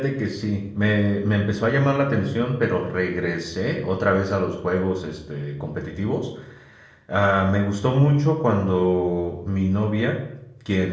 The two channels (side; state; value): both; identical; correlation 1.00